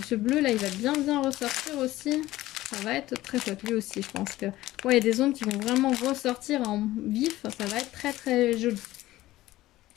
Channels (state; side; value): quieter; right; 16.3 dB